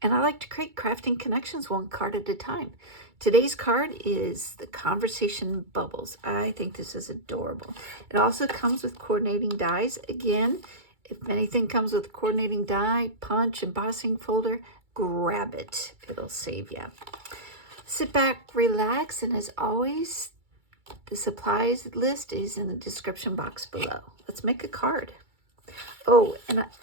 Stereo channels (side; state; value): left; late; 2.3 ms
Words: and I like to create crafting connections one card at a time. Today's card is the Conversation Bubbles. I think this is adorable. It also comes with coordinating dies. Again, if anything comes with coordinating die, punch, embossing folder, grab it. It'll save you. Sit back, relax, and as always, the supplies list is in the description box below. Let's make a card. Oh, and